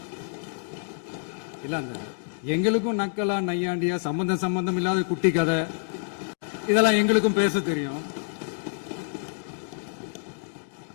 இல்ல அந்த எங்களுக்கும் நக்கலா நையாண்டியா சம்பந்தம் இல்லாத குட்டி கதை இதெல்லாம் எங்களுக்கும் பேச தெரியும்.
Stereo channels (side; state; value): right; silent; digital silence